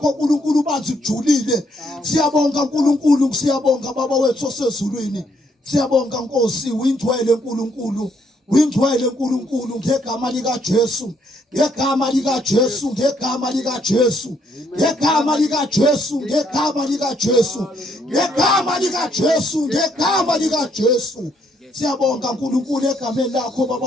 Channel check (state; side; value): normal; both; correlation 0.71